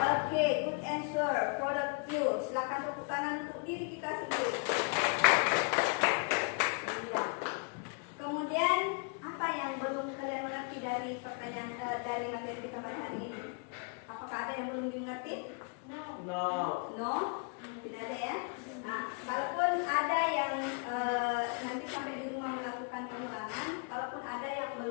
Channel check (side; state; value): right; quieter; 37.9 dB